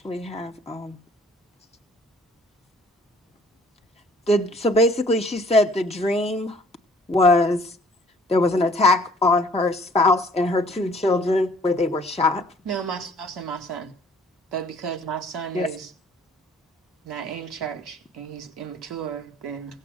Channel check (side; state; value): both; normal; correlation 0.56